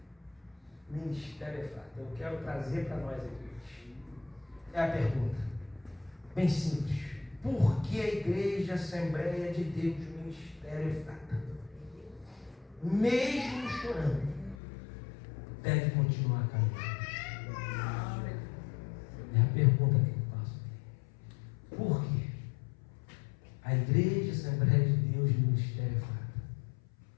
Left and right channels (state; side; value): drops out; right; at 14.6 s